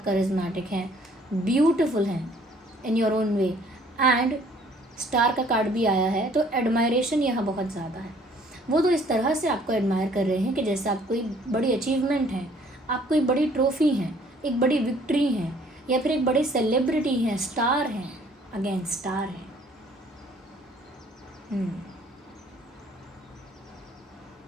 करिज्मेटिक हैं, ब्यूटिफुल हैं in your own way. And star का कार्ड भी आया है, तो एडमायरेशन यहाँ बहुत ज़्यादा है। वो तो इस तरह से आपको एडमायर कर रहे हैं कि जैसे आप कोई बड़ी अचीवमेंट हैं, आप कोई बड़ी ट्रॉफी हैं, एक बड़ी विक्ट्री हैं, या फिर एक बड़े सेलिब्रिटी हैं, स्टार हैं। अगेन स्टार है।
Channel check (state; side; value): normal; both; correlation 0.59